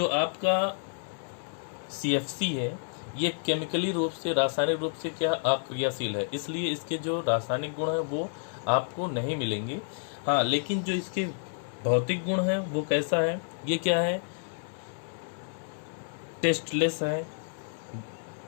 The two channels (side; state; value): right; silent; 58 dB below the other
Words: आपका CFC है, ये केमिकली रूप से, रासायनिक रूप से क्या अक्रियाशील है, इसलिए इसके जो रासायनिक गुण है वो आपको नहीं मिलेंगे। हाँ, लेकिन जो इसके भौतिक गुण है वो कैसा है? ये क्या है? टेस्टलेस है,